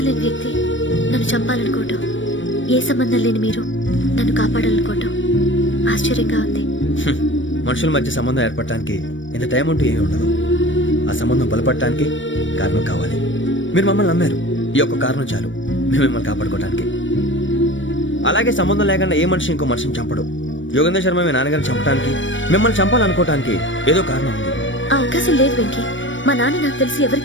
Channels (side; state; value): right; late; 0.56 ms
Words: లేని వ్యక్తి నన్ను చంపాలనుకోవటం, ఏ సంబంధం లేని మీరు నన్ను కాపాడాలనుకోవటం ఆశ్చర్యంగా ఉంది. మనుషుల మధ్య సంబంధం ఏర్పడటానికి ఇంత టైం ఉంటూ ఏమీ ఉండదు. ఆ సంబంధం బలపడటానికి కారణం కావాలి. మీరు మమ్మల్ని నమ్మారు, ఈ ఒక్క కారణం చాలు మేము మిమ్మల్ని కాపాడుకోవడానికి. అలాగే సంబంధం లేకుండా ఏ మనిషి ఇంకో మనిషిని చంపడు. యోగేంద్ర శర్మ మీ నాన్నగారిని చంపడానికి, మిమ్మల్ని చంపాలనుకోవటానికి ఏదో కారణం ఉంది. ఆ అవకాశం లేదు వెంకీ. మా నాన్న నాకు తెలిసి